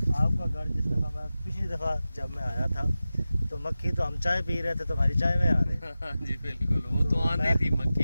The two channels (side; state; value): both; inverted; correlation -0.95